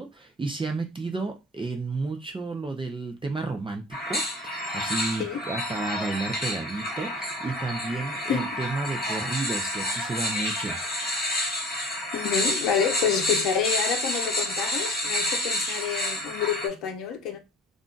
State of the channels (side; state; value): both; normal; correlation 0.41